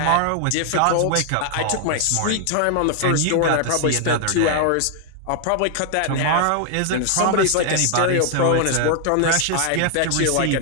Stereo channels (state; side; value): different; both; correlation 0.00